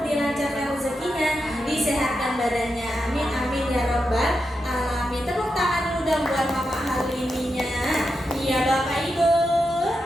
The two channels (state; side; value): normal; both; correlation 0.87